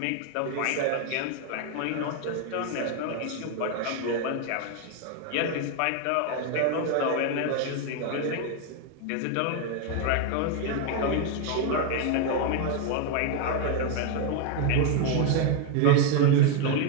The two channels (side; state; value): both; different; correlation 0.01